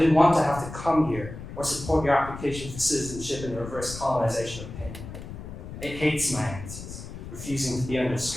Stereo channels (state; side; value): noise; left; rumble, 11 dB below the sound